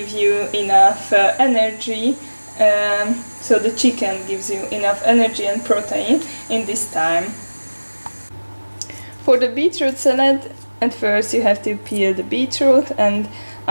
you enough energy. So the chicken gives you enough energy and protein in this time. For the beetroot salad, at first you have to peel the beetroot and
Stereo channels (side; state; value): both; inverted; correlation -1.00